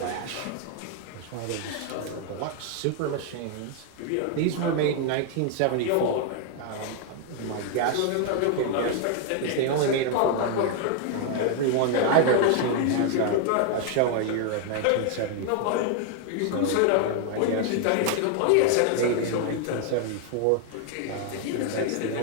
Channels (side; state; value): both; different; correlation 0.00